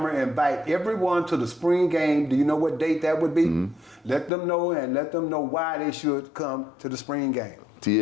and invite everyone to the spring game. Do you know what date that would be? Mm-hmm. Let them know and let them know why they should come to the spring game.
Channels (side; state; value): right; drops out; at 4.3 s